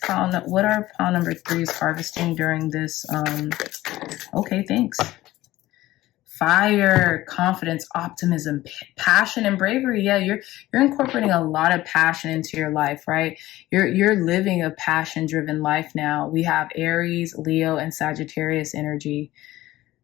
are pile number 3s harvesting during this? Okay, thanks. Fire, confidence, optimism, passion, and bravery. Yeah, you're incorporating a lot of passion into your life, right? You're living a passion-driven life now. We have Aries, Leo, and Sagittarius energy.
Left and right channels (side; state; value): right; quieter; 16.4 dB